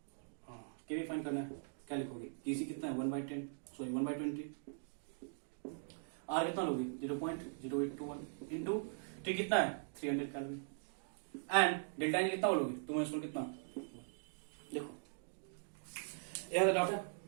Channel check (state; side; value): silent; left; digital silence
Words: Kp find करना है, क्या लिखोगे केसी कितना है 1/10, सॉरी 1/20, आर कितना लोगे 0.0821 इंटू टी कितना है 300 कैलोरी एंड डेल्टा एन कितना बोलोगे तुम कितना। देखो यह डाउट है